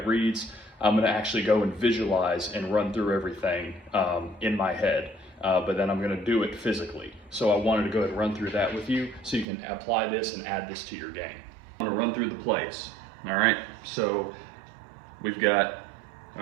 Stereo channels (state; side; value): drops out; left; at 9.5 s